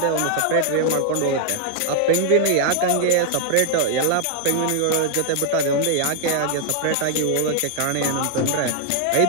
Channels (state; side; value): different; both; correlation 0.00